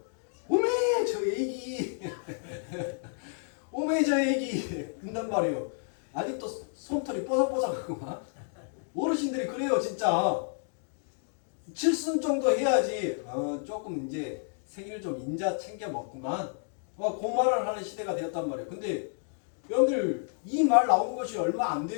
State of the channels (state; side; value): silent; right; 58 dB below the other